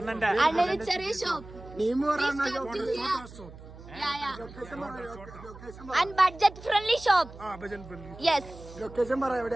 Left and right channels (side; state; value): right; noise; hum, 17 dB below the sound